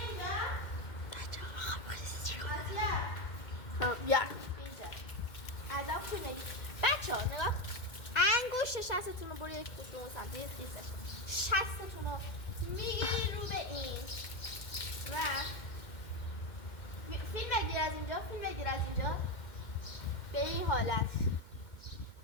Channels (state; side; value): late; right; 2.1 ms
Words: ماتیار بیا اینجا. ادب تو بگی بچه ها نگاه، انگشت شستتون رو برو یک کشون سمتی دیستش، شستتون رو میگیری رو به این و فیلم بگیر از اینجا به این حالت